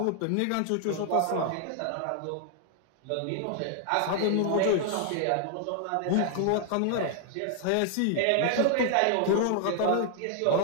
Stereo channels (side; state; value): both; different; correlation 0.00